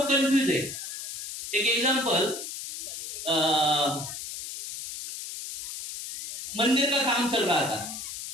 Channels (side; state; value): left; noise; hiss, 8 dB below the sound